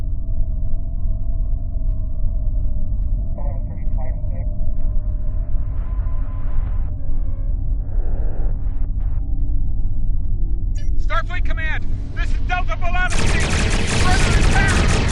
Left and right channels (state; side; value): identical; both; correlation 1.00